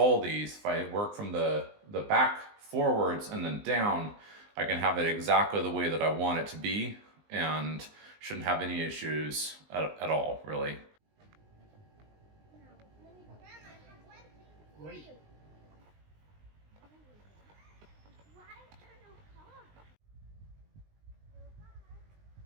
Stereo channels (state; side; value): late; left; 19 ms